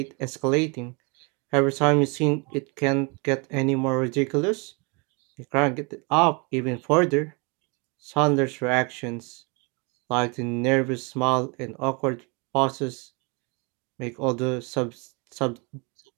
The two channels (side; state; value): left; quieter; 31.7 dB